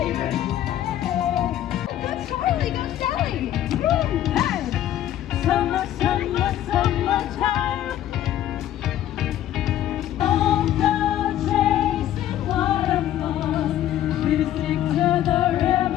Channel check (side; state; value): right; quieter; 12.1 dB